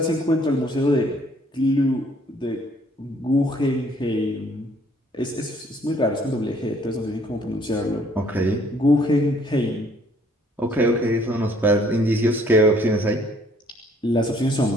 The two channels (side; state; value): both; normal; correlation 0.62